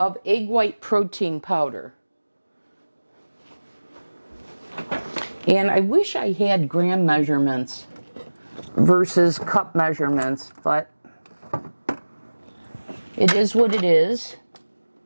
of egg white protein powder. And I wish I had gram measurements versus cup measurements, but it is what it is.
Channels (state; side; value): inverted; both; correlation -1.00